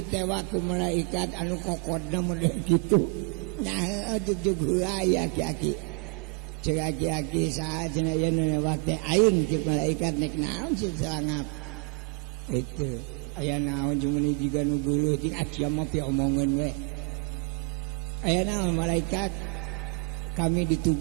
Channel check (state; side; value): quieter; left; 33.5 dB